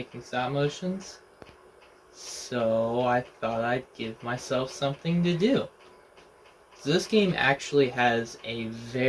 stop motions, so I thought I'd give myself something to do. So this game actually has a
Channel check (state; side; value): identical; both; correlation 1.00